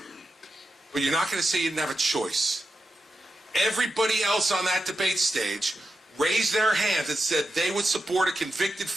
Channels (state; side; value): normal; both; correlation 0.88